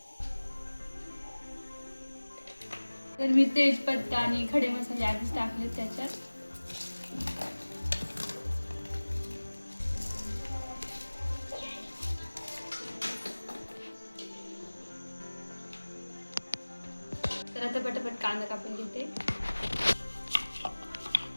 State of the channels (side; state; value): both; inverted; correlation -1.00